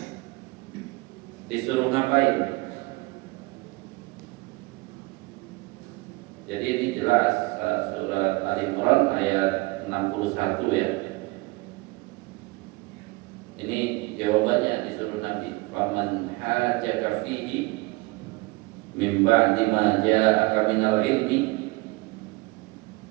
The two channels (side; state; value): left; quieter; 23.9 dB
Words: disuruh ngapain? Jadi ini jelas surat Ali Imran ayat 61 ya. Ini jawabannya disuruh Nabi, faman hajaka fihi min ba'di ma ja'aka minal ilmi.